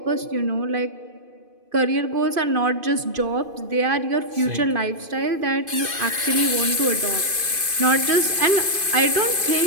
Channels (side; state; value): left; late; 2.5 ms